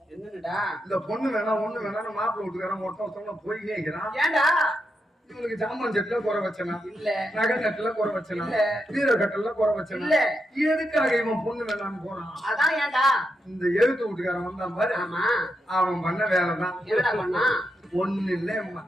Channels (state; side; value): normal; both; correlation 0.84